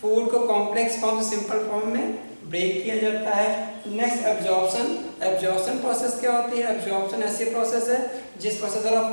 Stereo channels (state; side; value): inverted; both; correlation -1.00